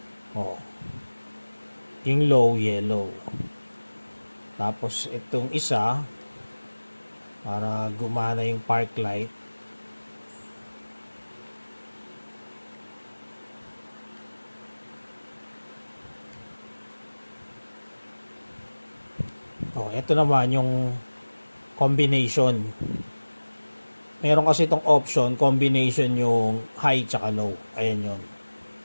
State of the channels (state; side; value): inverted; both; correlation -1.00